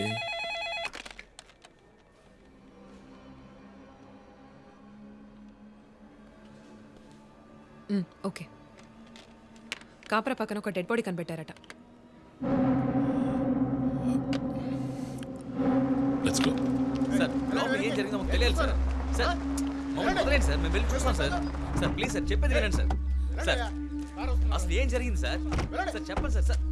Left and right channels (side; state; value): both; identical; correlation 1.00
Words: ఓకే. కాపరా పక్కన ఒక డెడ్ బాడీ కనిపెట్టారట. Let's go. సార్ లోపల ఏం జరిగిందో మాకు తెలియాలి సార్. సార్ మమ్మల్ని వదిలేండి సార్, మేము వెళ్ళి చూస్తాం సార్. సార్ ప్లీజ్ సార్, చెప్పేది వినండి సార్. సార్ అసలు ఏం జరిగింది సార్? సార్ చెప్పండి sir. Sir